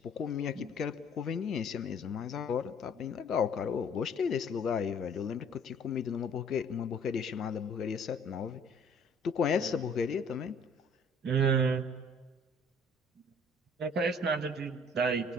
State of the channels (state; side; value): normal; both; correlation 0.55